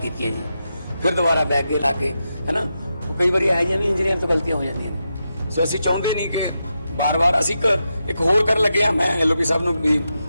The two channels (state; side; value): inverted; both; correlation -0.87